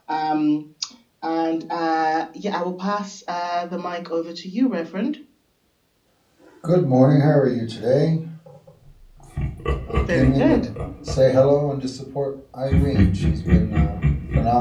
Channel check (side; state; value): both; identical; correlation 1.00